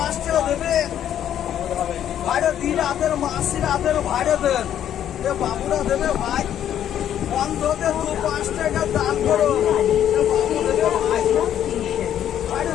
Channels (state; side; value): quieter; right; 10.4 dB